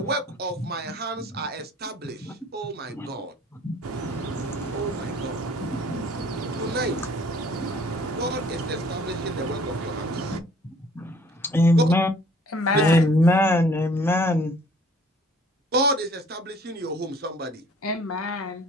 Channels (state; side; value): normal; both; correlation 0.55